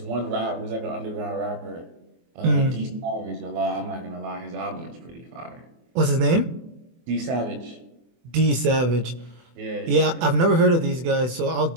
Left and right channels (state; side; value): late; left; 24 ms